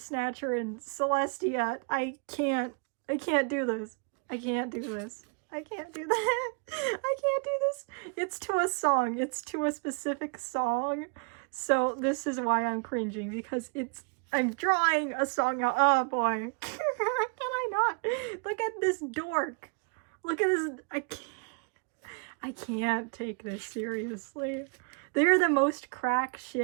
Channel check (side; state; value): left; quieter; 36.2 dB